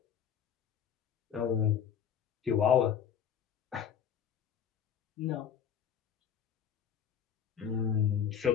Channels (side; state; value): right; quieter; 8.2 dB